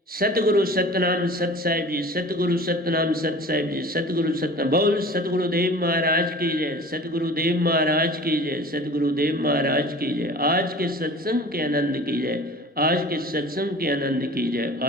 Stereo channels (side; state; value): both; normal; correlation 0.41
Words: सतगुरु सतनाम सत साहिब जी, सतगुरु सतनाम सत साहिब जी, सतगुरु सतनाम। बोल सतगुरुदेव महाराज की जय, सतगुरुदेव महाराज की जय, सतगुरुदेव महाराज की जय। आज के सत्संग के आनंद की जय, आज के सत्संग के आनंद की जय,